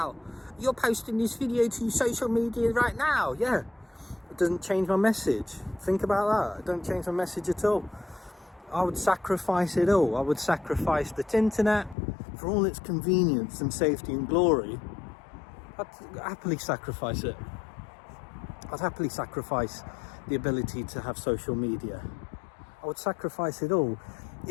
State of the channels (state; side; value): drops out; right; at 12.0 s